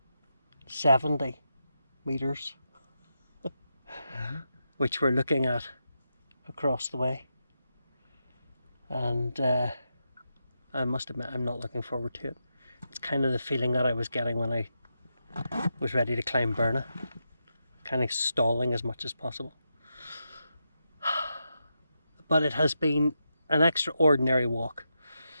metres, which we're looking at across the way. And I must admit, I'm not looking forward to it. It's kind of the feeling that I was getting when I was ready to climb Mourne, kind of stalling as much as possible. But it has been an extraordinary walk.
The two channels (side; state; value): both; inverted; correlation -0.86